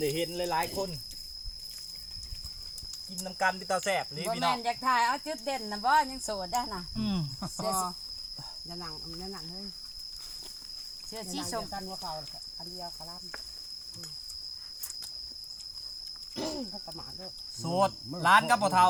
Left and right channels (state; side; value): identical; both; correlation 1.00